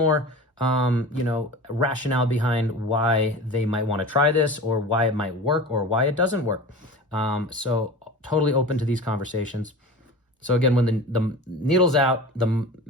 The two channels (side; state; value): both; normal; correlation 0.34